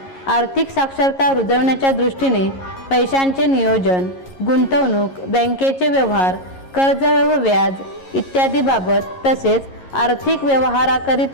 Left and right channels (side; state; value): right; late; 11 ms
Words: आर्थिक साक्षरता रुजवण्याच्या दृष्टीने पैशांचे नियोजन, गुंतवणूक, बँकेचे व्यवहार, कर्ज व व्याज इत्यादी बाबत तसेच आर्थिक